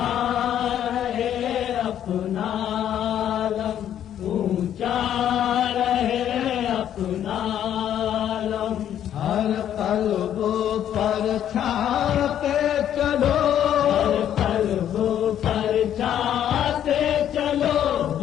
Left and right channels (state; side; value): quieter; right; 10.4 dB